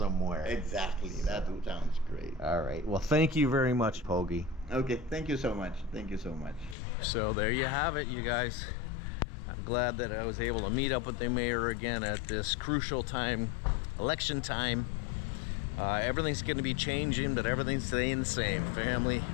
Exactly. That sounds great. All right. Well, thank you very much, Pogi. Okay, thank you so much. Thank you so much. So there you have it, you guys. I'm glad that I was able to meet up with the mayor again at this crucial time, election time. Everything's going to be changing, but everything's staying the same. Family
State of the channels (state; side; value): drops out; right; at 6.8 s